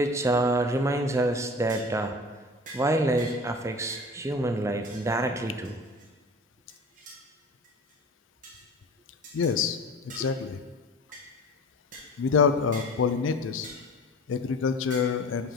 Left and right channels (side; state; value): both; normal; correlation 0.39